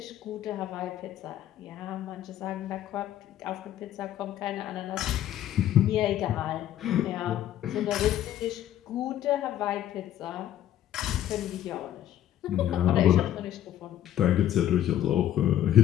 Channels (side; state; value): right; quieter; 11.8 dB